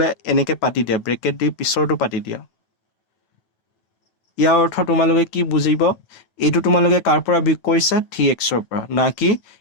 এনেকৈ পাতি দিয়া, ব্ৰেকেট দি পিছৰটো পাতি দিয়া, ইয়াৰ অৰ্থ তোমালোকে কি বুজিব, এইটো তোমালোকে কাৰ পৰা বিয়োগ কৰিছা, 3xৰ পৰা, না কি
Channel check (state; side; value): late; right; 9.1 ms